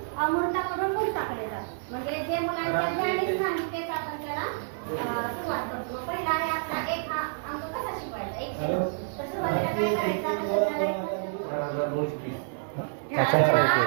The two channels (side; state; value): left; silent; digital silence